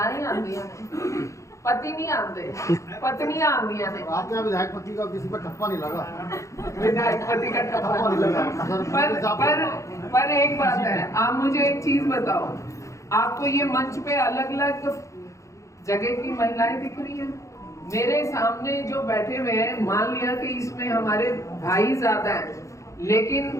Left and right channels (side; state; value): right; late; 0.15 ms